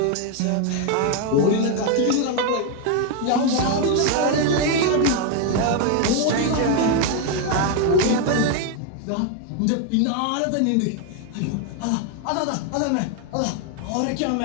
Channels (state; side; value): different; both; correlation 0.01